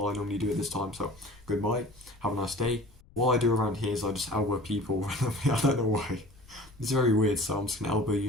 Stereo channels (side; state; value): left; noise; rumble, 25 dB below the sound